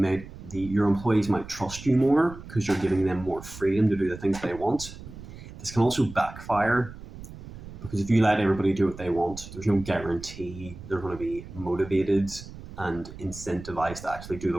your employees might trust you more because you're giving them more freedom to do the things they want. This can also backfire because if you let everybody do what they want, there's no guarantee they're going to be motivated and incentivized to actually do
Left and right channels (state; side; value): noise; right; rumble, 14 dB below the sound